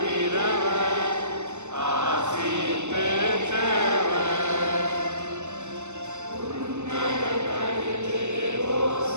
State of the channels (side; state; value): left; late; 0.83 ms